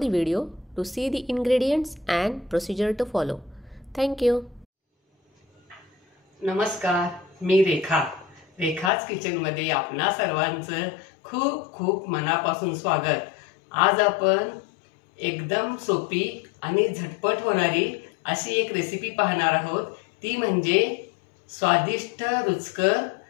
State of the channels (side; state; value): right; drops out; at 8.9 s